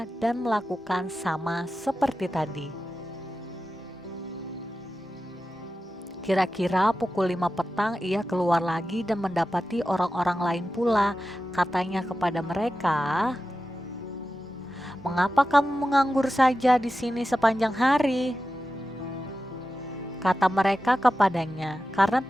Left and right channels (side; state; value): both; normal; correlation 0.93